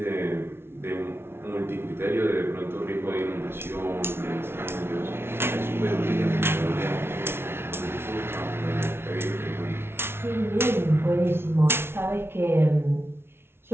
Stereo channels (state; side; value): late; left; 0.12 ms